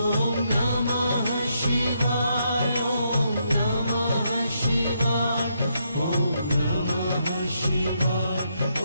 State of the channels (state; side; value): inverted; both; correlation -0.78